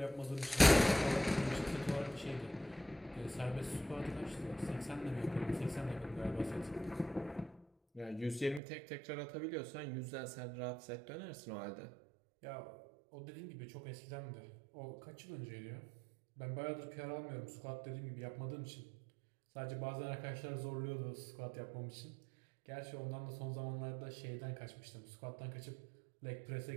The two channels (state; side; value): drops out; left; at 8.6 s